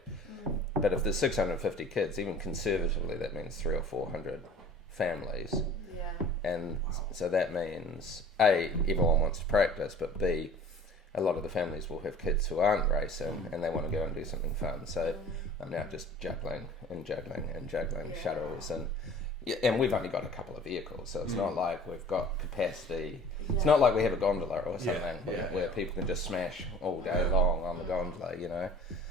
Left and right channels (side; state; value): both; normal; correlation 0.45